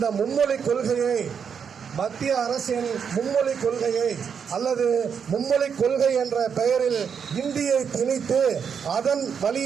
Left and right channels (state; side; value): quieter; left; 6.9 dB